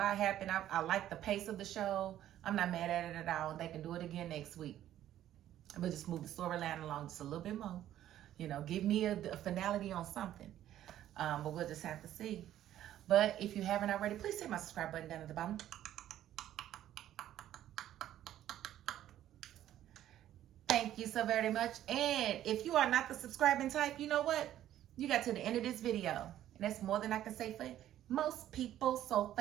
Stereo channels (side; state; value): left; quieter; 12.2 dB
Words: happened. I like the pace of the show. I'm not mad at it at all. They can do it again next week. But just move the storyline along just a little bit more. You know, give me a finality on something. But we'll just have to see. But if you haven't already, please hit my subscribe button down at the bottom. Thank you so very much. And if you are not the subscribing type, you know what? You got to the end of this video. And that's more than I can say for most people. So